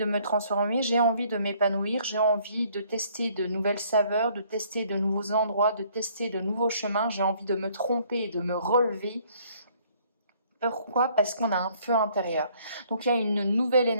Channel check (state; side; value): inverted; both; correlation -0.62